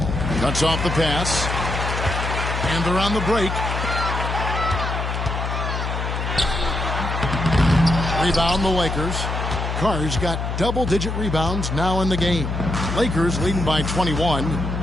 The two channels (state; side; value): noise; left; hum, 3 dB below the sound